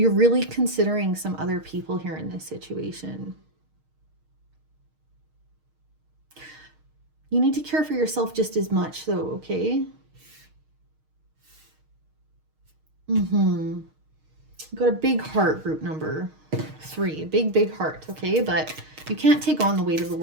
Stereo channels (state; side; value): late; left; 6.4 ms